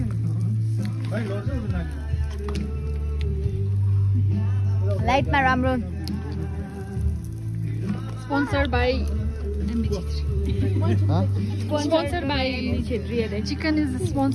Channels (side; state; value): both; identical; correlation 1.00